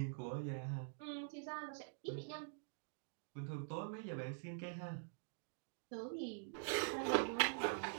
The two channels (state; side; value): silent; left; digital silence